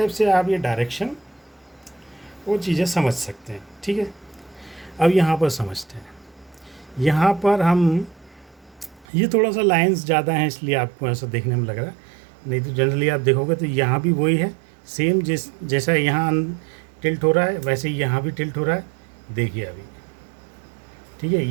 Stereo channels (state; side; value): drops out; left; at 9.1 s